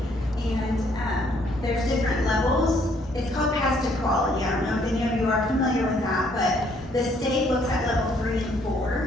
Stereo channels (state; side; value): normal; both; correlation 0.66